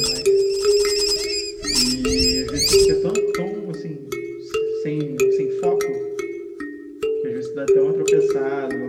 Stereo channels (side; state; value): both; identical; correlation 1.00